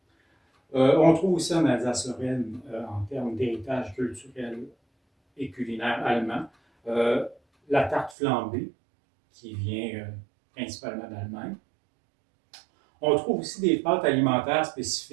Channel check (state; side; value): drops out; left; at 8.2 s